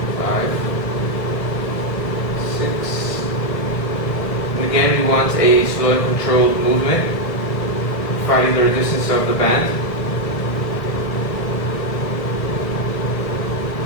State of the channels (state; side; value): late; right; 1.5 ms